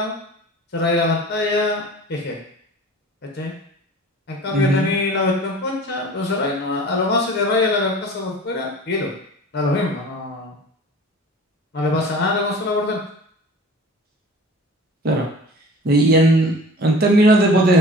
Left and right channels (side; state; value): both; normal; correlation 0.42